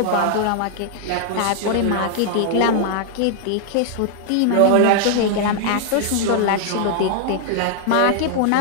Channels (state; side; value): different; both; correlation 0.00